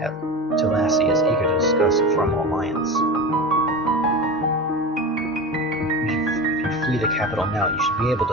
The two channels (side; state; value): both; normal; correlation 0.27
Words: is eager to discuss a formal alliance. If you flee the capital now, you should be able to